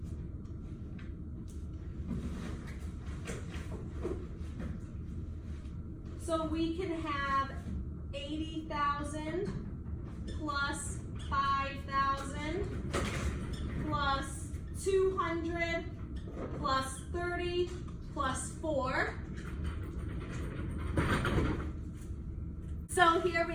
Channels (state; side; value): identical; both; correlation 1.00